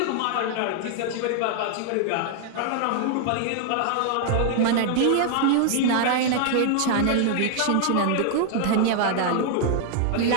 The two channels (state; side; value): different; both; correlation 0.00